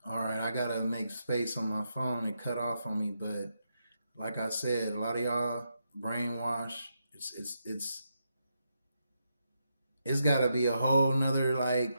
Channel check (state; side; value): inverted; both; correlation -0.83